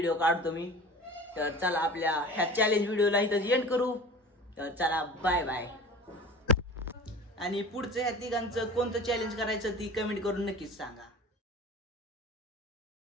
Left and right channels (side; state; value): both; normal; correlation 0.39